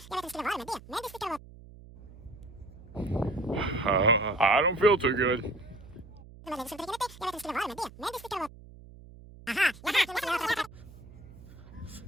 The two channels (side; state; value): right; noise; hum, 19 dB below the sound